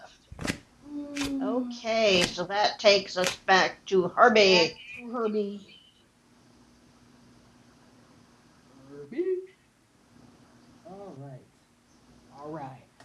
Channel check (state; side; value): identical; both; correlation 1.00